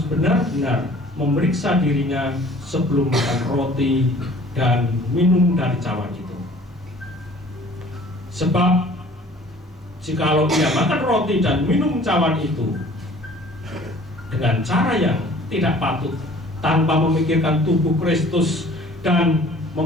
benar-benar memeriksa dirinya sebelum makan roti dan minum dari cawan itu. Sebab jikalau ia makan roti dan minum cawan itu dengan cara yang tidak patut, tanpa memikirkan tubuh Kristus dan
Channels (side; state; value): both; normal; correlation 0.51